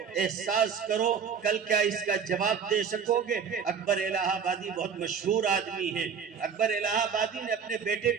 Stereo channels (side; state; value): left; quieter; 6.7 dB